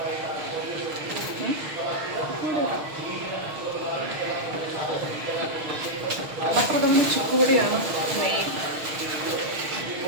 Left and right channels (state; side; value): late; left; 6.5 ms